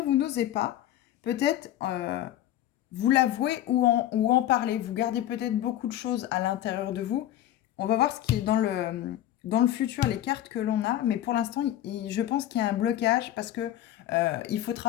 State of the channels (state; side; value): quieter; right; 12.7 dB